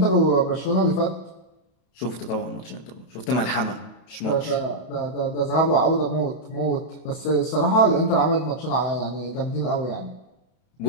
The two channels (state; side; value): late; right; 32 ms